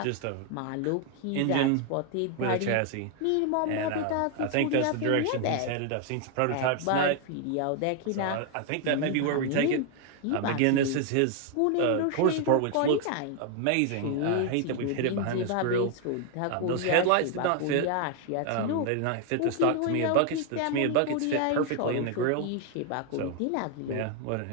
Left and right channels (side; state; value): both; different; correlation 0.00